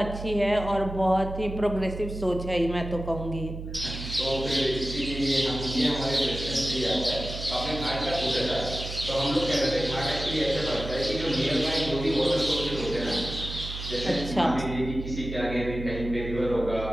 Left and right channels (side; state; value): right; noise; hum, 8 dB below the sound